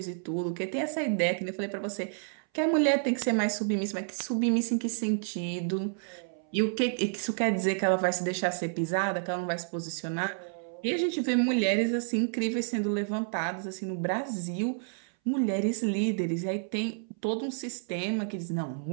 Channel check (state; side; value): silent; left; 58 dB below the other